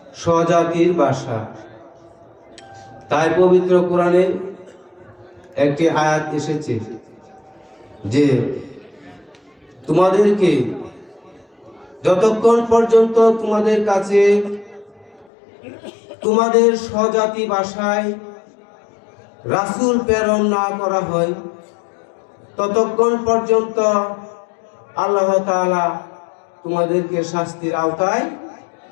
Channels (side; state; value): right; drops out; at 15.2 s